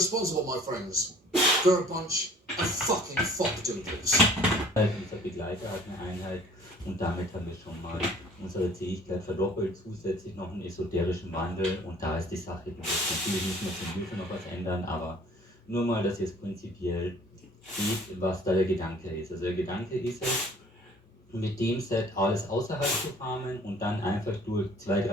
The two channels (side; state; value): both; normal; correlation 0.52